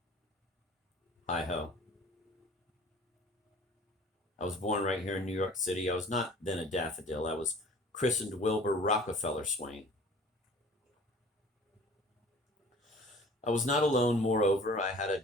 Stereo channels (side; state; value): both; normal; correlation 0.47